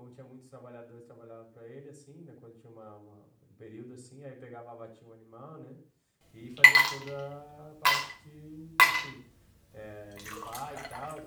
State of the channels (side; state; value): both; identical; correlation 1.00